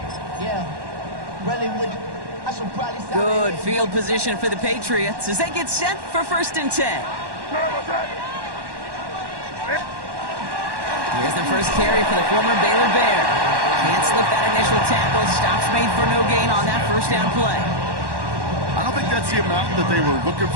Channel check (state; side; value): late; left; 1.1 ms